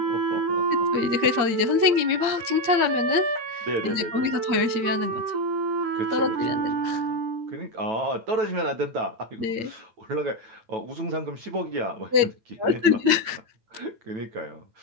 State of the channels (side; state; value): left; late; 8.7 ms